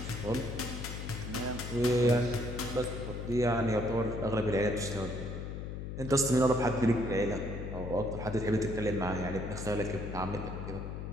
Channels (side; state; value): left; noise; hum, 6 dB below the sound